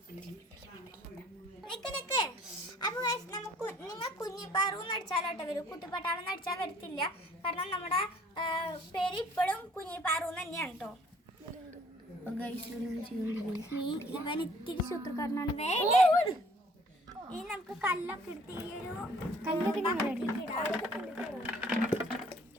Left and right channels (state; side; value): normal; both; correlation 0.57